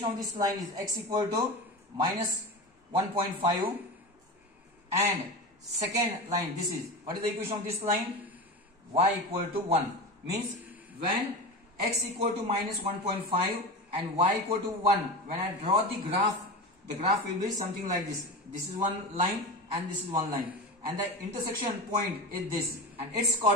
of this line is x equal to minus 1.5 and second line, this is, what is the equation of this line? Y equal to 1. Means when x equal to minus 1.5 and y equal to 1, when I draw the graph will be something like this. This is one line and this is one line. And the intersection point is this. And its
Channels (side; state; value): both; normal; correlation 0.26